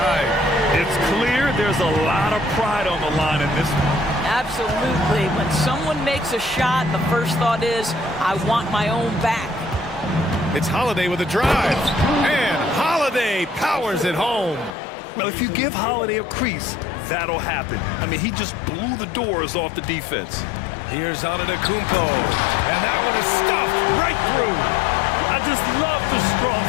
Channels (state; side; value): drops out; right; at 14.8 s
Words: It's clear there's a lot of pride on the line in this one. Absolutely. When someone makes a shot, the first thought is, I want my own back. It's Holiday with a drive. And Holiday powers it home. Well, if you give Holiday a crease, that'll happen. I mean, he just blew the doors off the defense. Here's Antetokounmpo. And that one is stuffed right through. I just love the strong